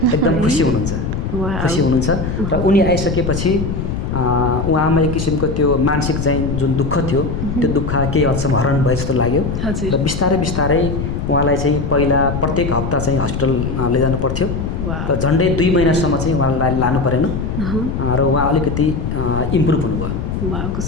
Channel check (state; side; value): noise; left; rumble, 3 dB below the sound